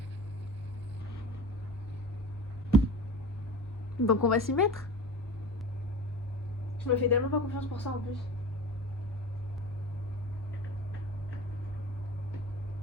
Donc on va s'y mettre. Je me fais tellement pas confiance pour ça en plus.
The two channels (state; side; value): normal; both; correlation 0.35